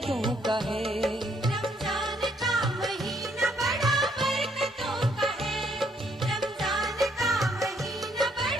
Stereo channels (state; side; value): normal; both; correlation 0.69